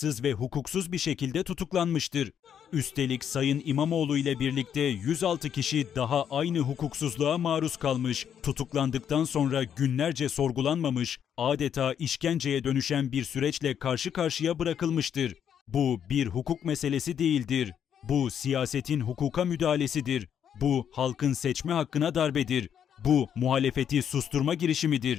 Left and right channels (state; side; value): quieter; right; 8.7 dB